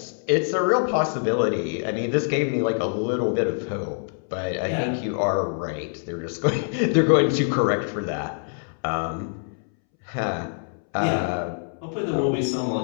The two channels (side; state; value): right; silent; 62 dB below the other